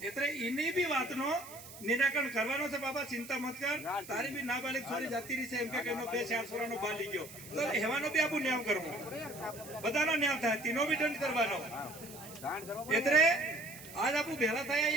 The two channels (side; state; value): right; noise; hiss, 16 dB below the sound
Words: એટલે એની બી વાતનો નિરાકરણ કરવાનો છે. બાબા ચિંતા મત કર, તારી બી નાબાલિગ છોરી જાતી રહી છે એમ કે એનો 2-4 છોરાનો બાલ લઈ ગયો તો એવાનો બી આપણું ન્યાય કરવું, બધાનો ન્યાય થાય, તેનો બી દંડ કરવાનો. એટલે આજ આપણું ભેળા થયા